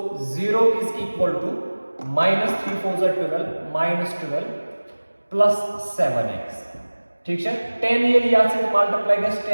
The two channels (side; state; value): both; inverted; correlation -1.00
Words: 0 is equal to -3 4 12 plus 7x ठीक है 10 ये लिया से मल्टीप्लाई कर